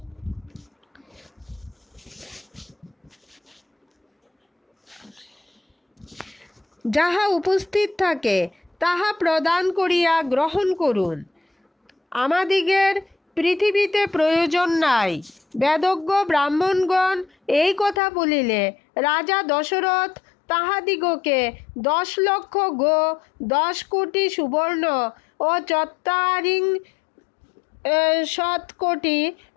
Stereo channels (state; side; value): drops out; right; at 18.0 s